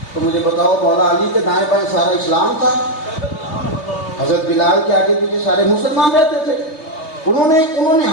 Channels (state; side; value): late; right; 3.3 ms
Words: تو مجھے بتاؤ مولا علی کے دائیں بائیں سارا اسلام تھا، حضرت بلال کے آگے پیچھے سارے مسلمان رہتے تھے، انہوں نے